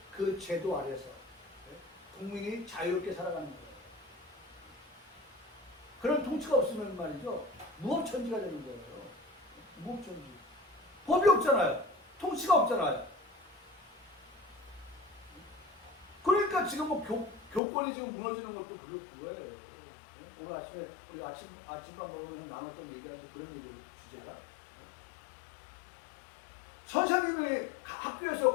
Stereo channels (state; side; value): drops out; right; at 17.6 s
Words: 그 제도 아래서 국민이 자유롭게 살아가는 거예요. 그런 통치가 없으면 말이죠. 무법천지가 되는 거예요. 무법천지. 법이 없잖아요. 통치가 없잖아요. 그러니까 지금 뭐 교권이 지금 무너지는 것도 그거예요. 오늘 아침에 우리가 아침밥 먹으면서 나눴던 얘기하면서 그런 얘기 주제가 선생님이 학교에서